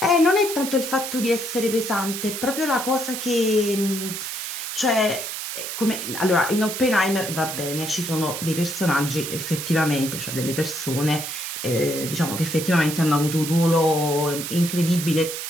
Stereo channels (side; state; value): right; noise; hiss, 6 dB below the sound